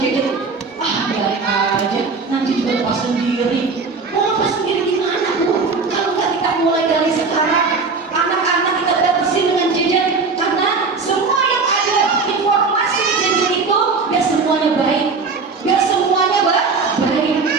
Biarin aja, nanti juga lepas sendiri. Mau lepas sendiri gimana, bu? Kalau nggak kita mulai dari sekarang, anak-anak kita batasi dengan gadget. Karena semua yang ada informasi gadget itu gak semuanya baik, gak semuanya baik,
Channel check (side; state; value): left; quieter; 4.5 dB